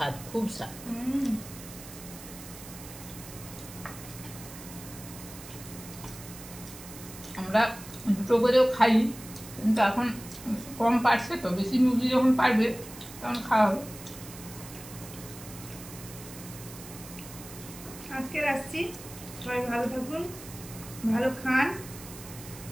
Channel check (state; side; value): noise; right; hiss, 15 dB below the sound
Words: খুব স্বাদ। আমরা দুটো করেও খাই, কিন্তু এখন কম পারছে তো, বেশি মুরগি যখন পারবে তখন খাওয়া হবে। আজকে রাখছি, সবাই ভালো থাকুন, ভালো খান,